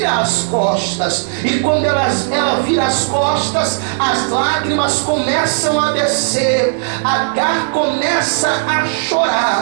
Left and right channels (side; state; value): left; silent; digital silence